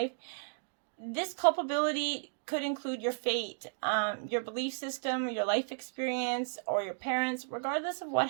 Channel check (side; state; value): left; silent; digital silence